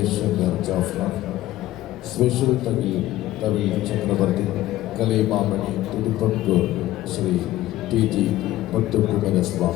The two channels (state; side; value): quieter; right; 15.2 dB